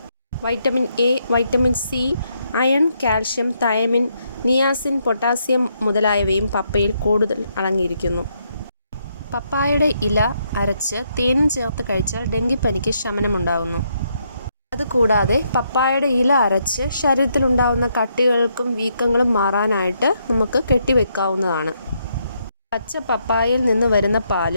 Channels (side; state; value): both; inverted; correlation -0.76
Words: Vitamin A, vitamin C, iron, calcium, thiamine, niacin, potassium മുതലായവയും പപ്പയിൽ കൂടുതൽ അടങ്ങിയിരിക്കുന്നു. പപ്പായയുടെ ഇല അരച്ച് തേനും ചേർത്ത് കഴിച്ചാൽ ഡെങ്കിപ്പനിക്ക് ശമനമുണ്ടാകുന്നു. അതുകൂടാതെ പപ്പായയുടെ ഇല അരച്ച് ശരീരത്തിലുണ്ടാകുന്ന കട്ടികൾക്കും വീക്കങ്ങളും മാറാനായിട്ട് നമുക്ക് കെട്ടിവെക്കാവുന്നതാണ്. പച്ച പപ്പായയിൽ നിന്ന് വരുന്ന